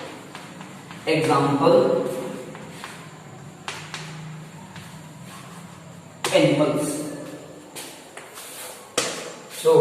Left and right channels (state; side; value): identical; both; correlation 1.00